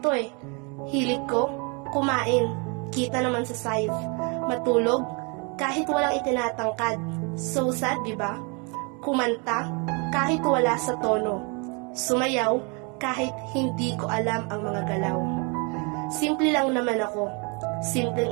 eh. Hilig ko, kumain, kita naman sa size, matulog, kahit walang itinatangkad. So sad, diba? Kumanta, kahit wala sa tono. Sumayaw, kahit hindi ko alam ang mga galaw. Simple lang naman ako.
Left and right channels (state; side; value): quieter; left; 32.8 dB